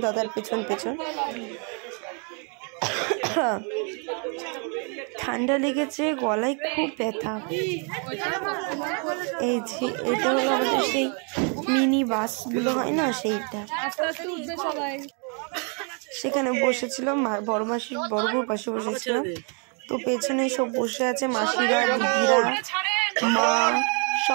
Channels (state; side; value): quieter; left; 38.4 dB